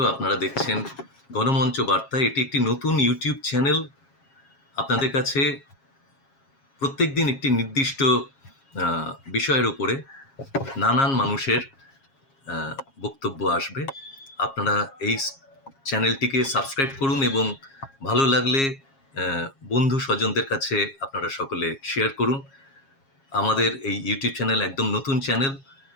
আপনারা দেখছেন গণমঞ্চ বার্তা। এটি একটি নতুন ইউটিউব চ্যানেল। আপনাদের কাছে প্রত্যেকদিন একটি নির্দিষ্ট বিষয়ের উপরে নানান মানুষের বক্তব্য আসবে। আপনারা এই চ্যানেলটিকে সাবস্ক্রাইব করুন এবং ভালো লাগলে বন্ধু স্বজনদের কাছে আপনারা সকলে শেয়ার করুন। আমাদের এই ইউটিউব চ্যানেল একদম নতুন চ্যানেল।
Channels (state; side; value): late; right; 7.3 ms